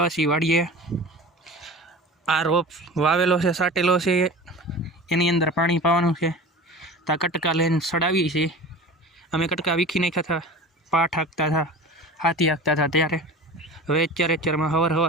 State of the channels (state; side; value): normal; both; correlation 0.36